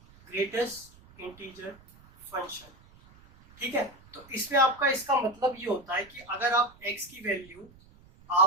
greatest integer function. ठीक है, तो इसमें आपका इसका मतलब ये होता है कि अगर आप x की वैल्यू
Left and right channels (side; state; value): right; noise; rumble, 25 dB below the sound